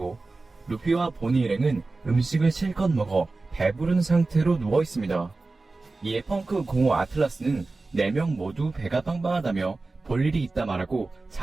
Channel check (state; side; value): quieter; left; 3.5 dB